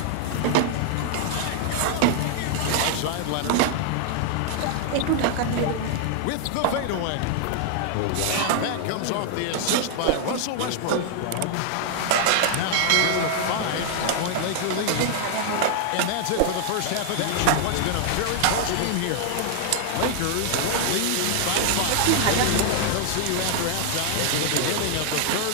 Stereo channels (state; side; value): different; both; correlation 0.00